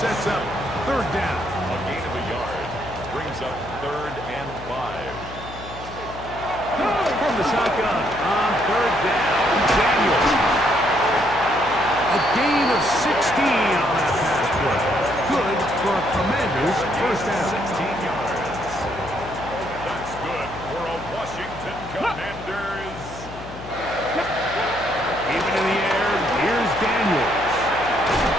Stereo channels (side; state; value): left; noise; hum, 13 dB below the sound